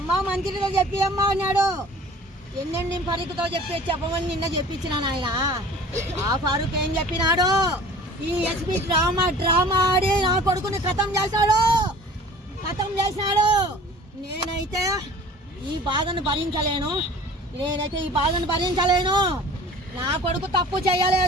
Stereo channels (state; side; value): normal; both; correlation 0.45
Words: మంత్రితో చెప్పి అమ్మ అన్నాడు. ఎన్నెన్ని ఫరూక్తో చెప్పమని నిన్న చెప్పించిన ఆయన. ఆ ఫరూక్ ఏం చెప్పినాడు? ఈ ఎస్పీ డ్రామా ఆడి నా కొడుకుని ఖతం చేశాడు. నేనైతే ఈ బాధను భరించలేను. నా కొడుకు తప్పు